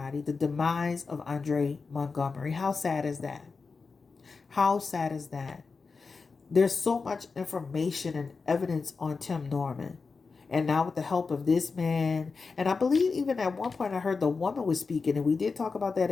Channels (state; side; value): quieter; right; 4.6 dB